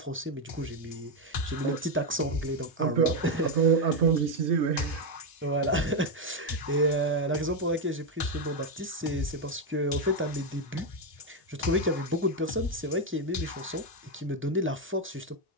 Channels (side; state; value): both; normal; correlation 0.05